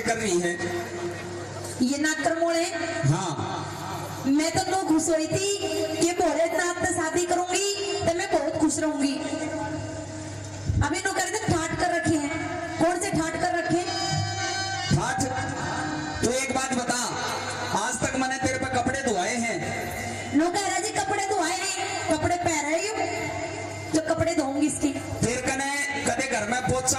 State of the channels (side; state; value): both; identical; correlation 1.00